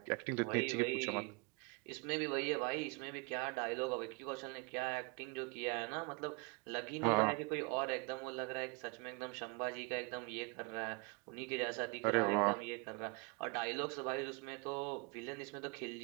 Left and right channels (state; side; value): quieter; left; 29.8 dB